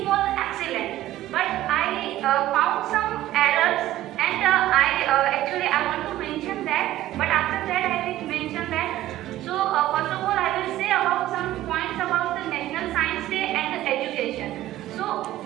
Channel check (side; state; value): left; quieter; 14.6 dB